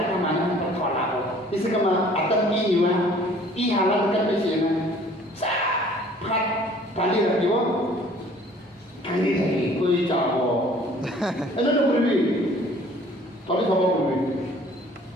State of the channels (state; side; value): normal; both; correlation 0.54